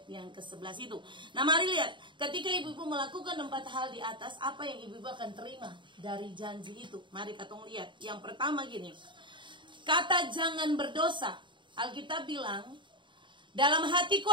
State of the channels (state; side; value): late; left; 0.23 ms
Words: yang ke-11 itu. Nah, mari lihat, ketika ibu-ibu melakukan 4 hal di atas, apa yang ibu-ibu akan terima dari janji itu? Mari katong lihat. Yang pertama gini, kata jangan berdosa. Alkitab bilang, dalam